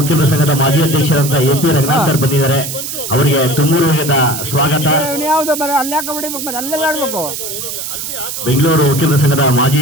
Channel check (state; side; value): noise; right; hiss, 6 dB below the sound